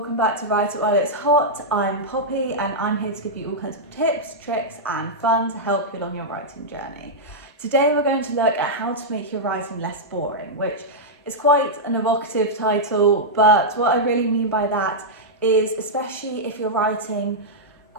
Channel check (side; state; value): both; normal; correlation -0.07